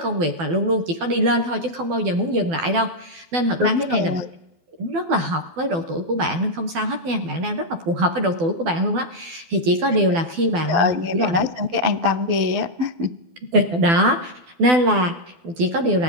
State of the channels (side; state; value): left; late; 12 ms